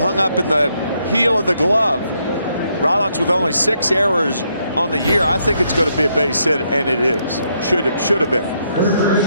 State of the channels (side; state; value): both; inverted; correlation -0.76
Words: up in the heel of the glove. Rollins with only 6 errors on the year. I think it's going to be a base hit, and it is. Should have been.